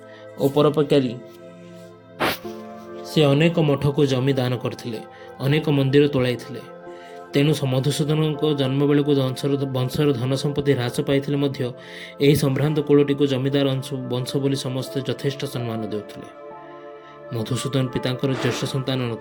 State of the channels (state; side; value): identical; both; correlation 1.00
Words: परोपकारी। से अनेक मठ को जमी दान करथिले, अनेक मंदिर तोड़ाइथिले। तेणु मधुसूदन जन्म बेले को वंशर धन संपत्ति ह्रास पाइथिले मध्य एही संभ्रांत कुलटी को जमीदार वंश बोली समस्ते यथेष्ट सम्मान देउथिले। मधुसूदन पितांकर ज्येष्ठ संतान